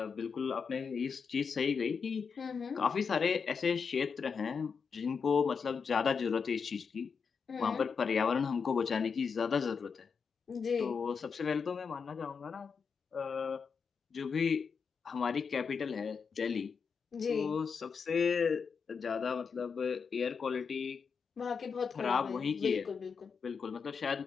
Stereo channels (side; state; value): right; quieter; 5.8 dB